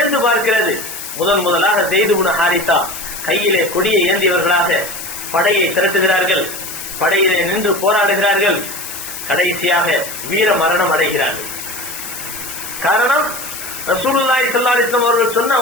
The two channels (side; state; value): left; noise; hiss, 9 dB below the sound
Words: பார்க்கிறது. முதலாக ஸைத் இப்னு ஹாரிஸா கையிலே கொடியை ஏந்தியவர்களாக படையை திரட்டுகிறார்கள். படையிலே நின்று போராடுகிறார்கள். கடைசியாக வீர மரணம் அடைகிறார்கள். காரணம் ரசூலுல்லாஹி ஸல்லல்லாஹு அலைஹி வஸல்லம் அவர்கள் சொன்ன